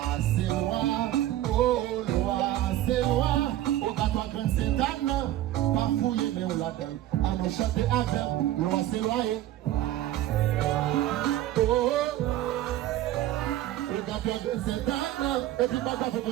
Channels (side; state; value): left; quieter; 13.8 dB